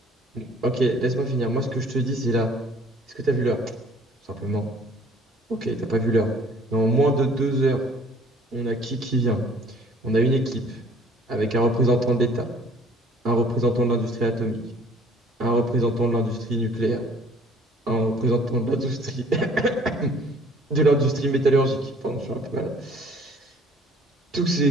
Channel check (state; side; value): normal; both; correlation 0.55